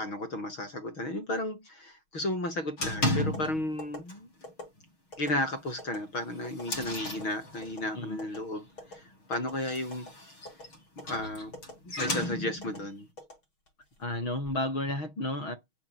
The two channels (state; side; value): late; right; 6.3 ms